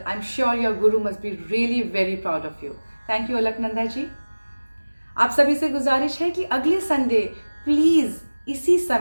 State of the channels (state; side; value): inverted; both; correlation -1.00